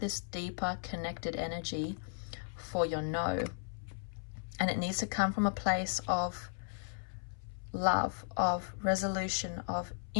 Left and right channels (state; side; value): silent; right; 54 dB below the other